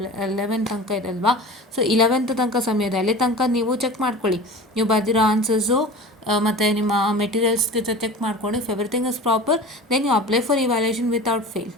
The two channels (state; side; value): normal; both; correlation 0.36